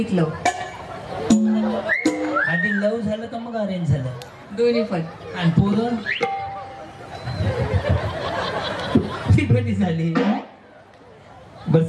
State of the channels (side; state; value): both; identical; correlation 1.00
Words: लव. आधी लव झालं का मग अरेंज झालं? दोन्ही पण. आणि पोरं ती कधी झाली? बरं